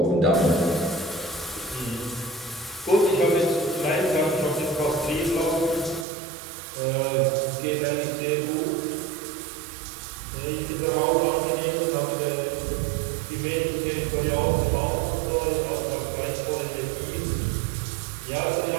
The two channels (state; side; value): drops out; left; at 6.1 s